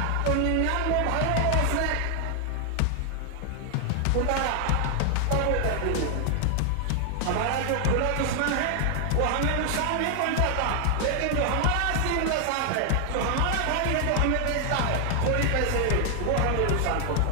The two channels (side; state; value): both; different; correlation 0.00